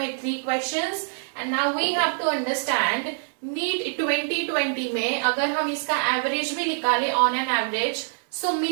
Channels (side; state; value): left; silent; digital silence